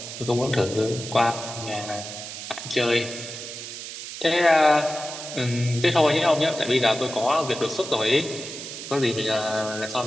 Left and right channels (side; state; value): right; noise; hiss, 9 dB below the sound